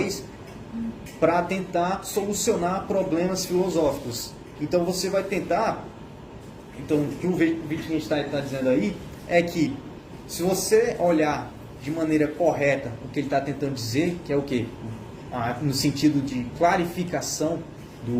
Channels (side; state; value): both; identical; correlation 1.00